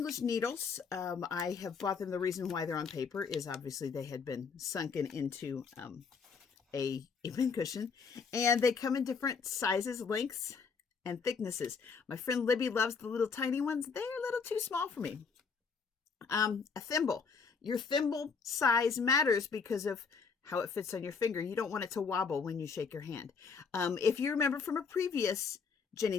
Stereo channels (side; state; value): right; quieter; 5.5 dB